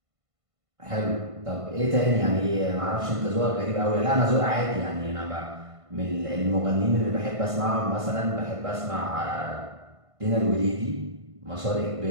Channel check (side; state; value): left; late; 1.5 ms